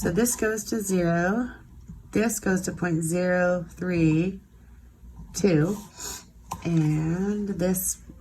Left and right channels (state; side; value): identical; both; correlation 1.00